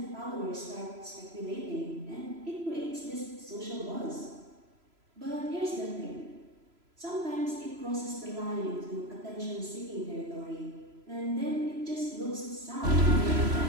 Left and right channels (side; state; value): left; late; 3.0 ms